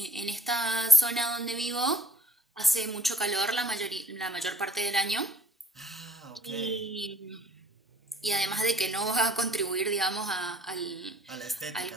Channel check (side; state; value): both; normal; correlation 0.61